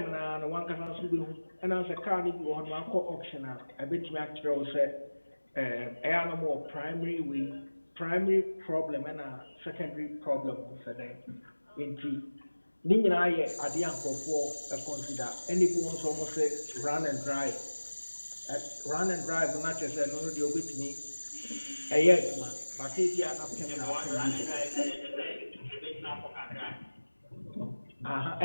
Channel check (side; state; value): both; inverted; correlation -1.00